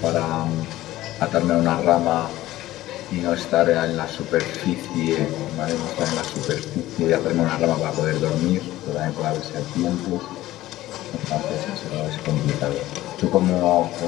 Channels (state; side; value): quieter; right; 15.7 dB